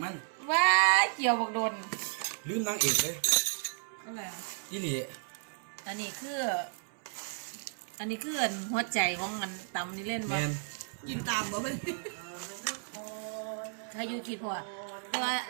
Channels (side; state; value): left; silent; 55 dB below the other